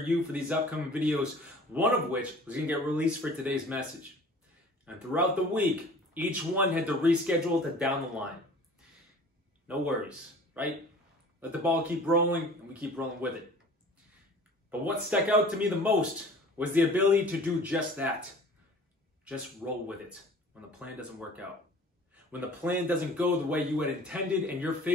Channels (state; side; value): normal; both; correlation 0.46